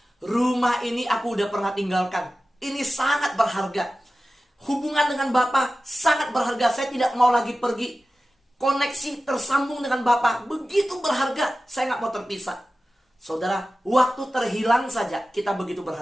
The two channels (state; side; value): normal; both; correlation 0.95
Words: rumah ini aku udah pernah tinggalkan. Ini sangat berharga. Hubungan dengan Bapa sangat berharga. Saya tidak mau lagi pergi. Koneksi tersambung dengan Bapa begitu berharga. Saya nggak mau terpisah. Saudara, waktu terhilang saja kita begitu